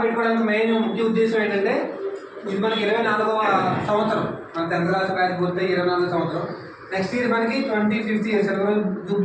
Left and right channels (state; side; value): identical; both; correlation 1.00